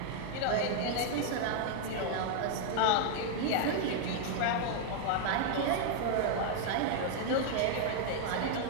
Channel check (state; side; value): different; both; correlation 0.00